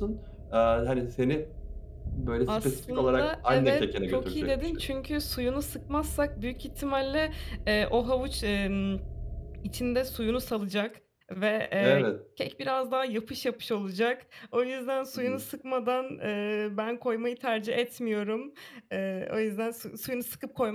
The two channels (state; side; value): identical; both; correlation 1.00